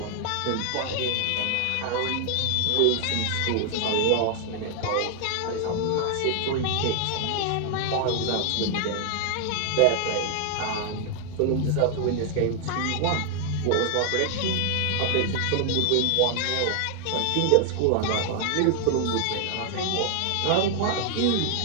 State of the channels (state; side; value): different; both; correlation 0.00